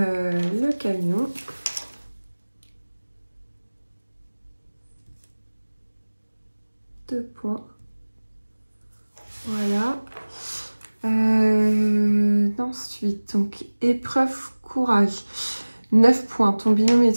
camion. Deux points. Voilà. Ensuite, donc, épreuve courage. 9 points. Ton binôme et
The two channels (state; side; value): inverted; both; correlation -1.00